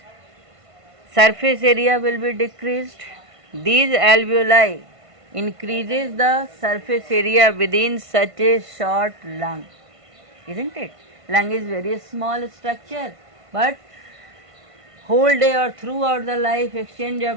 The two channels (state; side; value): late; left; 1.5 ms